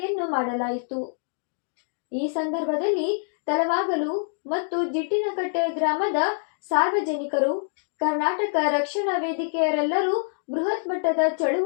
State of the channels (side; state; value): right; silent; digital silence